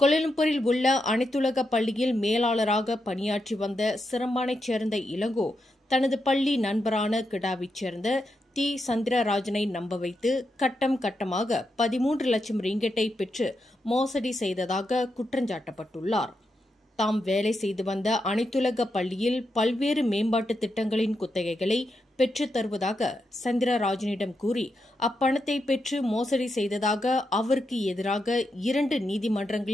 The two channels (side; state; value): both; normal; correlation 0.85